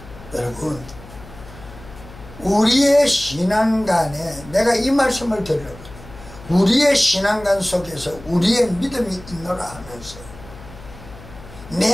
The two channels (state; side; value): noise; left; hum, 18 dB below the sound